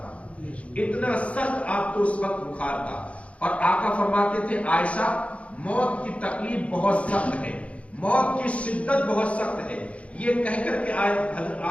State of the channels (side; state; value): right; late; 0.064 ms